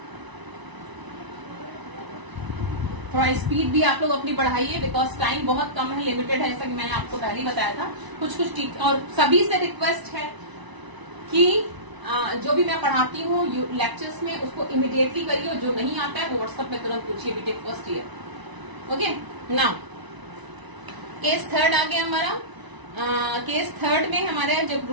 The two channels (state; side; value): late; left; 1.0 ms